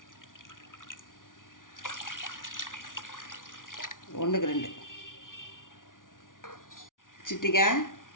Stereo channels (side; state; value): right; late; 0.88 ms